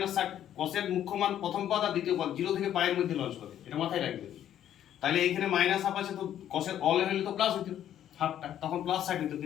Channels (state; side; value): quieter; right; 10.9 dB